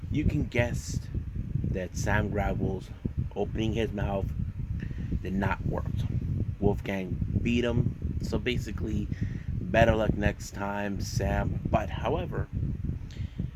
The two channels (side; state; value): both; identical; correlation 1.00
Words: you can guess that Sam Gradwell's opening his mouth did not work. Wolfgang beat him, so basically, better luck next time, Sam. But however,